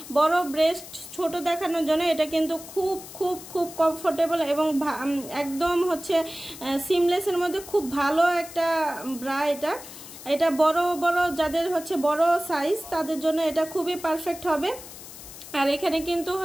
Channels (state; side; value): noise; left; hiss, 15 dB below the sound